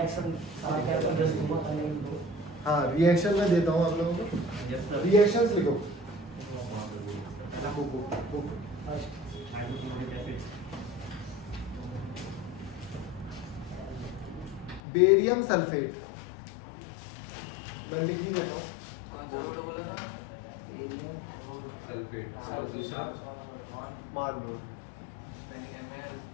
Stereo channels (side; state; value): right; drops out; at 14.8 s